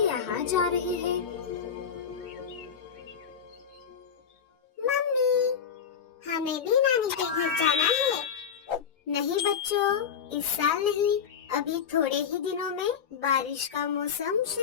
यहाँ जा रही है। मम्मी, हमें भी नानी के घर जाना है। नहीं बच्चों, इस साल नहीं, अभी थोड़े ही दिनों में बारिश का मौसम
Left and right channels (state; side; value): quieter; right; 7.2 dB